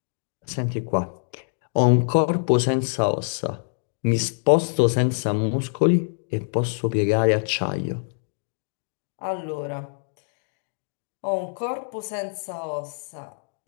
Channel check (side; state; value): right; silent; digital silence